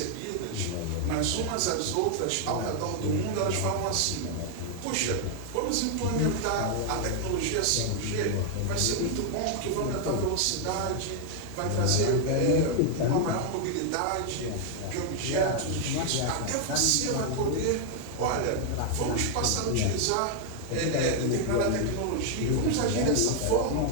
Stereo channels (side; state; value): both; different; correlation 0.00